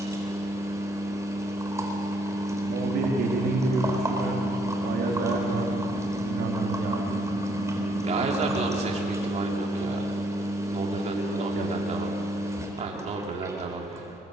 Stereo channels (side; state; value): both; normal; correlation 0.70